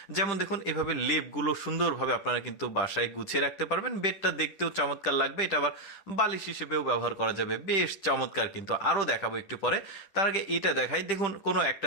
যেমন দেখুন এভাবে লেপগুলো সুন্দরভাবে আপনারা কিন্তু বাসায় গুছিয়ে রাখতে পারবেন। বেডটা দেখতেও চমৎকার লাগবে, এটা আবার বালিশ হিসেবেও ব্যবহার করা যাবে, বেশ চমৎকার। কিন্তু আরও দেখাবো একটু পরে। তার আগে এটা দেখাই, দেখুন কোনো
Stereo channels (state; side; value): late; right; 10 ms